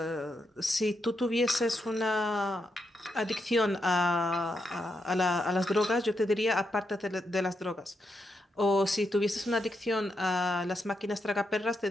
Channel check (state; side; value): normal; both; correlation 0.83